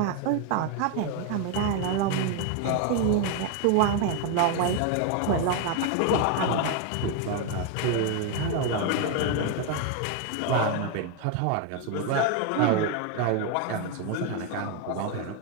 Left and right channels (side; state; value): both; different; correlation 0.01